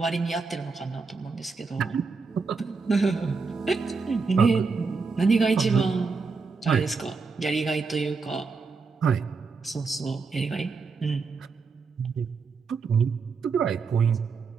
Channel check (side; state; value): left; quieter; 4.7 dB